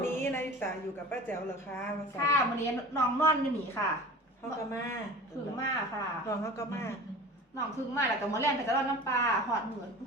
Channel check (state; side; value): normal; both; correlation 0.38